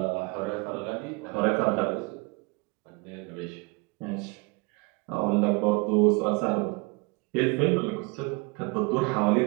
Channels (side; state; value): left; quieter; 27.8 dB